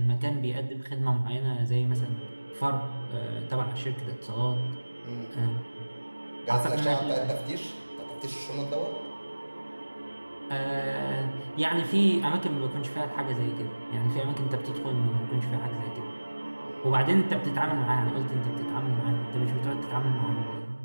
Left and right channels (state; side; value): inverted; both; correlation -1.00